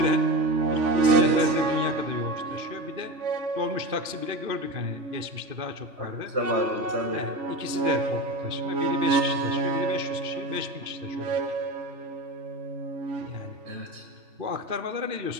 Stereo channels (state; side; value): late; left; 2.5 ms